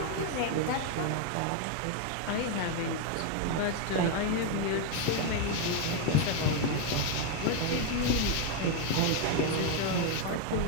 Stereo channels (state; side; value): different; both; correlation 0.01